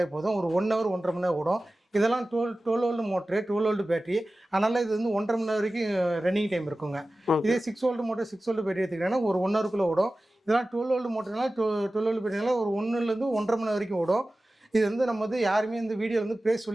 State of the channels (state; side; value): normal; both; correlation 0.96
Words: போதும். ஒரு 1 ஹவர் 1.5 மணி நேரம் ஓடும். இதெல்லாம் 12 வோல்ட் மோட்ரு, 12 வோல்ட் பேட்டரி. அதனால இது வந்து 1.5 மணி நேரம் வரைக்கும் ரன்னிங் டைம் இருக்குங்க. இதே 6 வோல்ட் மோட்டர், 6 வோல்ட் பேட்டரி எடுத்துக்கிட்டேன்னா ஒரு 1 ஹவருக்குள்ளே ஓடும். இதெல்லாம் 12 வோல்ட் மோட்டர்னால 12 வோல்ட் பேட்டரினால ஒரு 1லேருந்து 1.5 மணி நேரம் வரைக்கும் ஓடும். இது வந்து நம்ம வந்து யாருமே இந்த வீடியோ வந்து ப்ரைஸ்